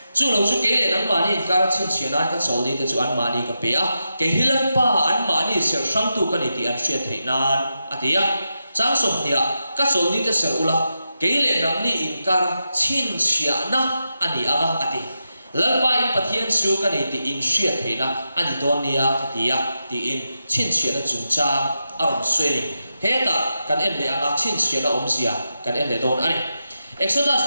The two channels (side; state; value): both; inverted; correlation -0.88